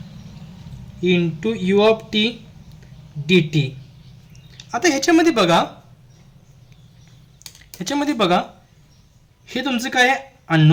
into u of t dt. आता ह्याच्यामध्ये बघा हे तुमचं काय आहे,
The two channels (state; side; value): identical; both; correlation 1.00